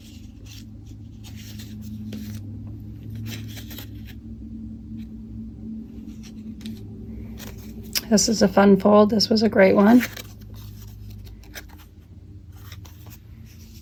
This is a fun fold. This was a great one.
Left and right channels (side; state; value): both; identical; correlation 1.00